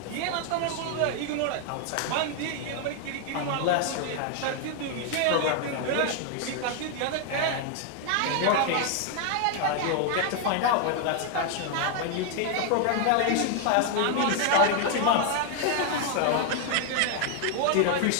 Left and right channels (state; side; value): different; both; correlation 0.00